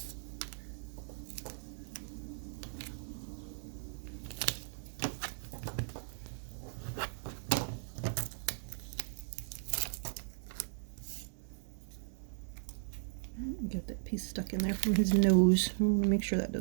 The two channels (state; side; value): silent; left; digital silence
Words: Get that piece stuck in there from his nose. I want to make sure that